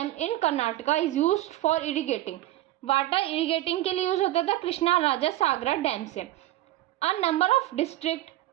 in Karnataka is used for irrigating. Water irrigating के लिए यूज होता था कृष्णा राजा सागरा डैम से। A number of district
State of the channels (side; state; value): left; quieter; 15.5 dB